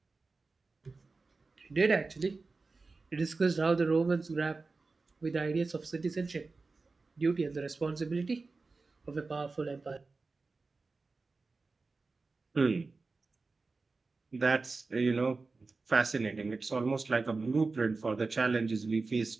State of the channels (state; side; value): quieter; left; 3.9 dB